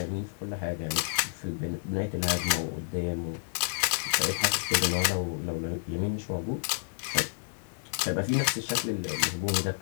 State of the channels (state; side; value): silent; right; digital silence